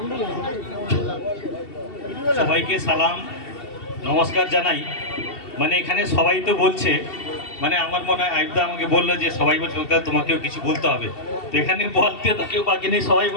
সবাইকে সালাম নমস্কার জানাই। মানে এখানে সবাই তো বলছে, মানে আমার মনে হয় আইবদা আমাকে বললো যে সবাই বলছে তোমাকেও কিছু বলতে হবে। তো এখানে বলতে তো কেউ বাকি নেই, সবাই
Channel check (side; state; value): right; late; 2.7 ms